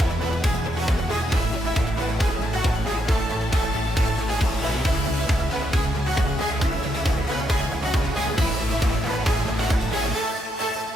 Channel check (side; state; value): both; normal; correlation 0.78